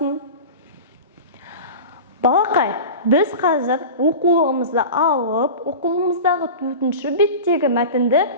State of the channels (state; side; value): inverted; both; correlation -0.32